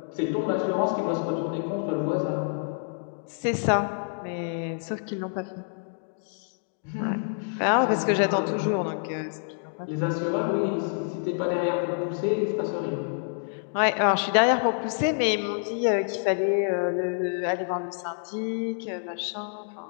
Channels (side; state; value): right; silent; digital silence